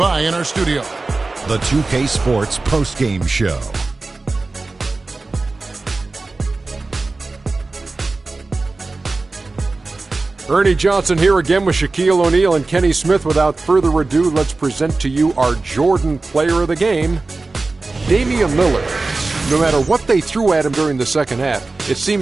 in our studio. the 2K Sports postgame show. Ernie Johnson here again with Shaquille O'Neal and Kenny Smith. Without further ado, let's present to you our Jordan player of the game, Damian Lillard. No matter what they threw at him during the second half, it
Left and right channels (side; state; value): left; quieter; 3.5 dB